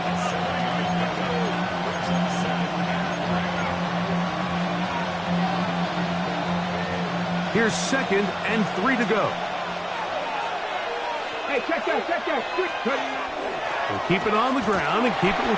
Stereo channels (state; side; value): identical; both; correlation 1.00